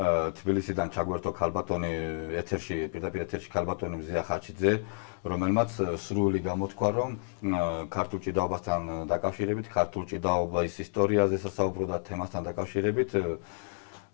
ჩაგვერთო ქალბატონი პირდაპირ ეთერში ქალბატონი მზია ხაჩიძე, რომელმაც სრული გამოთქვა, რომ ქართულ ჭიდაობასთან დაკავშირებით, ქართულ ჭიდაობის ისტორიაზე სასაუბრო და თემასთან დაკავშირებით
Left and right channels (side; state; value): right; silent; digital silence